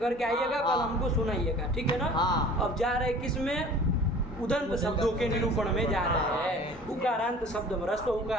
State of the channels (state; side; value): normal; both; correlation 0.45